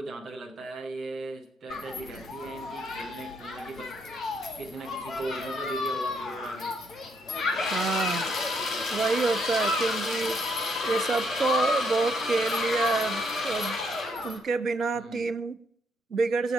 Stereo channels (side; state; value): both; normal; correlation 0.73